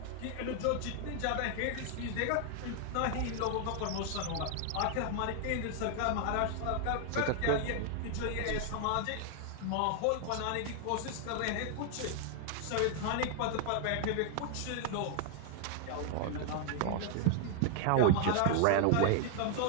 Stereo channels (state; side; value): different; both; correlation 0.00